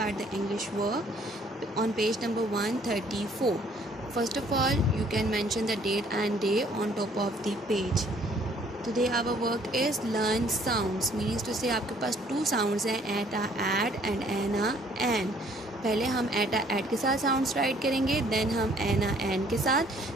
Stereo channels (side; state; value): both; normal; correlation 0.60